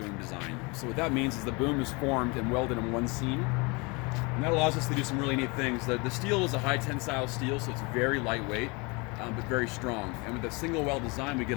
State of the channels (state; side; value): quieter; right; 28.2 dB